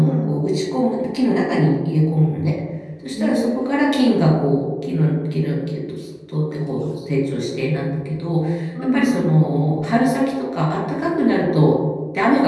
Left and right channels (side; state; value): both; identical; correlation 1.00